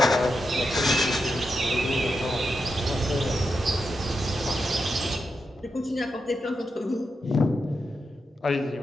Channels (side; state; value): both; normal; correlation 0.86